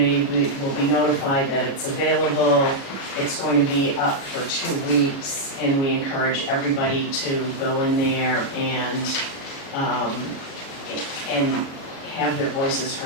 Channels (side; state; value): right; late; 36 ms